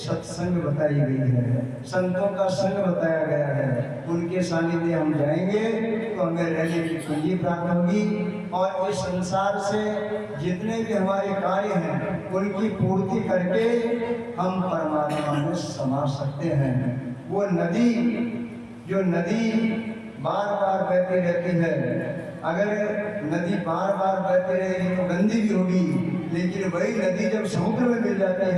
बताई गई है, संतों का संग बताया गया है। उनके सानिध्य हम जाएंगे तो हमें रहने की पूंजी प्राप्त होगी और इस संसार से जितने भी हमारे कार्य हैं उनकी पूर्ति करके हम परमात्मा में समा सकते हैं। वो नदी, जो नदी बार बार बहती रहती है, अगर नदी बार बार बहती रहेगी तो गंदी भी होगी, लेकिन वही नदी जब समुद्र में मिल जाती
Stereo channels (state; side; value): identical; both; correlation 1.00